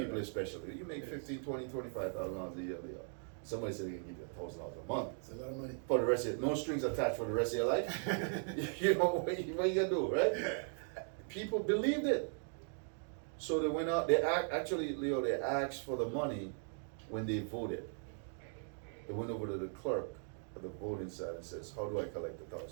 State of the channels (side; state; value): left; silent; 52 dB below the other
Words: people especially. You make $15,000, $20,000, $25,000 a year. Somebody said they can give you $1,000 a month. It's a lot of money. For the rest of no strings attached for the rest of your life. You know what you gonna do, right? People believed it. So they went out, actually, Leo, they asked for the money when they voted. They went over to the clerk at the voting side and says, how do I collect the $1,000